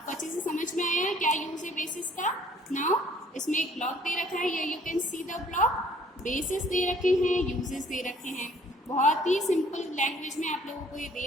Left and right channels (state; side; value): normal; both; correlation 0.58